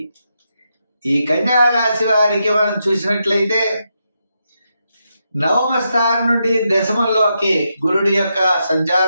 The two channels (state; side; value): inverted; both; correlation -0.84